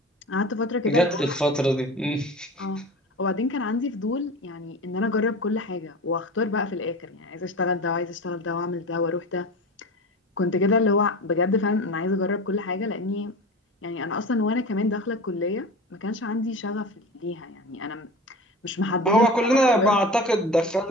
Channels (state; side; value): normal; both; correlation 0.32